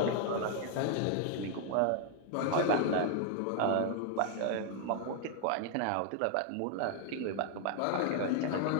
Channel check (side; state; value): both; different; correlation 0.00